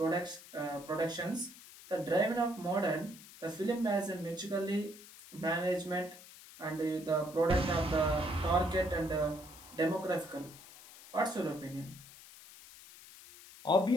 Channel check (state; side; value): noise; left; hiss, 18 dB below the sound